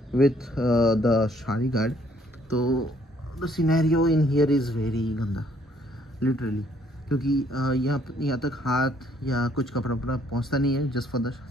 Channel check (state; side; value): normal; both; correlation 0.65